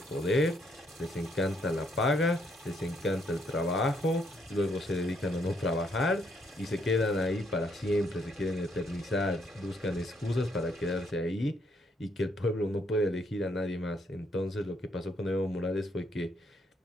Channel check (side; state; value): both; normal; correlation 0.72